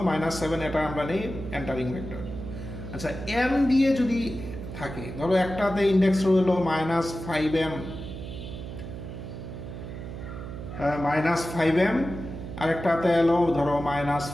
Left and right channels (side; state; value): right; noise; hum, 9 dB below the sound